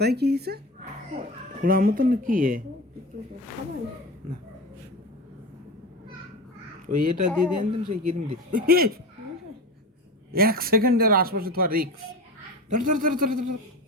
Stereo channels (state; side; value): normal; both; correlation 0.28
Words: কি হয়েছে? খোলার মতন কি না, ওই এটা দিয়ে দেন সেই ক্রিম দিয়ে। 1 সেকেন্ডের আশপাশে তোমার রিক্স। ধর ধর ধর ধর ধর।